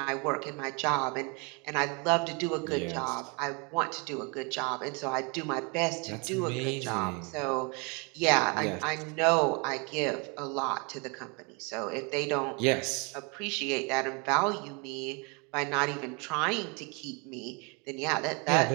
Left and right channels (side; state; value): left; quieter; 31.9 dB